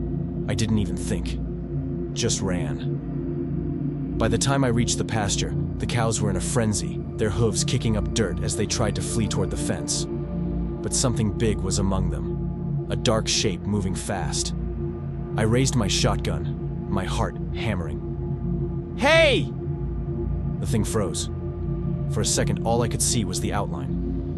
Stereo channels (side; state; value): both; identical; correlation 1.00